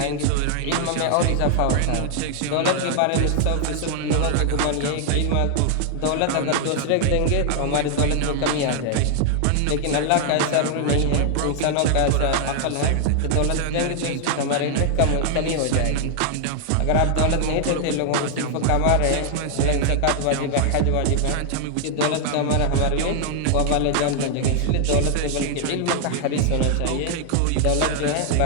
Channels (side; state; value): both; different; correlation 0.00